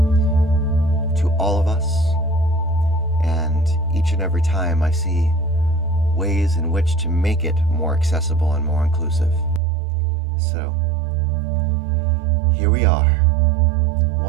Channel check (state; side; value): drops out; left; at 9.6 s